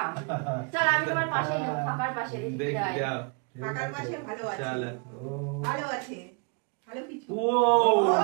চল আমি তোমার পাশে ফাঁকার পাশে দেখি দেখি যাই। যাও ফাঁকার পাশে ভালো আছে, চালা ভালো আছে, ভালো কিছু। ও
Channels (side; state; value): left; quieter; 33.8 dB